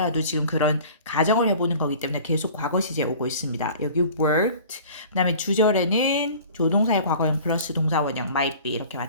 지금 그런 가정을 해보는 거기 때문에 계속 과거 시제 오고 있습니다. 여기 worked, 그 다음에 주절에는 조동사의 과거형 플러스 동사원형 might be 이렇게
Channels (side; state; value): both; inverted; correlation -0.45